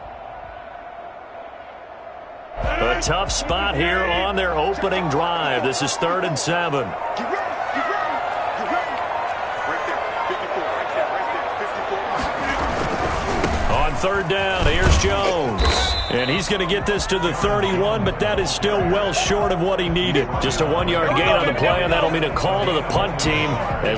A tough spot here on their opening drive. This is 3rd and 7. On 3rd down, here's Jones. And he's going to get this to the 31, but that is still well short of what he needed. Just a 1-yard gain on the play, and that'll mean a call to the punt team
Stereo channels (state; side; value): identical; both; correlation 1.00